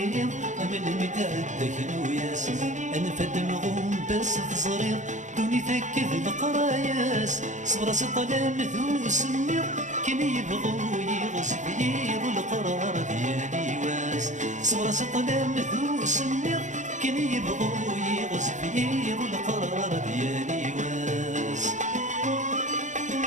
من مدعدك نوياس، أنفد مغوم بس تصريض دوني ثكذ القراياس، صبر سطلام ذو سمير كن يبغو يغصب يضو القرار ديالي واس، صبر سطلام ذو سمير كن يبغو يغصب يضو القرار ديالي واس.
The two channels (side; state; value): left; late; 0.35 ms